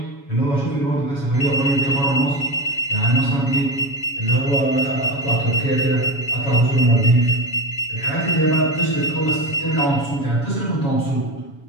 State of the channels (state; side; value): late; right; 7.2 ms